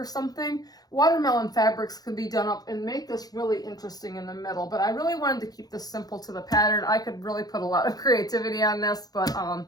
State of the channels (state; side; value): late; right; 0.19 ms